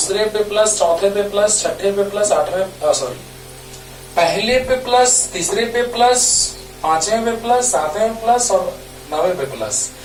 पे प्लस, चौथे पे प्लस, छठे पे प्लस, आठवें सॉरी पहले पे प्लस, तीसरे पे प्लस, पांचवें पे प्लस, सातवें पे प्लस और नौवें पे प्लस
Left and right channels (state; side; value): identical; both; correlation 1.00